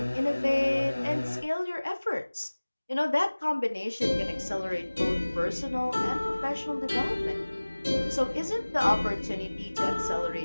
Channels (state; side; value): inverted; both; correlation -1.00